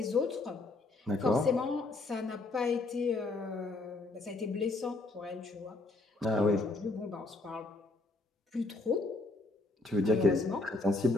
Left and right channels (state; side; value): quieter; right; 3.1 dB